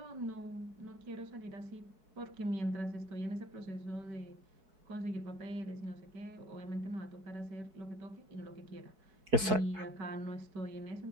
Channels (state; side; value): late; left; 4.6 ms